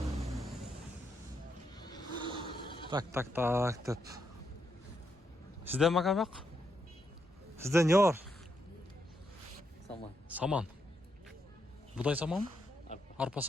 Так деп. Сизден макабак? Сизден не бар? Саман. Будай саман? Арпа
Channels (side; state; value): both; normal; correlation 0.80